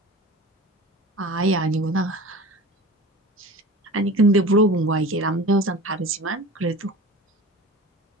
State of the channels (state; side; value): normal; both; correlation 0.36